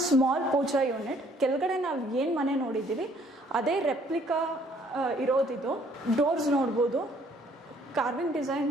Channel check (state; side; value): normal; both; correlation 0.62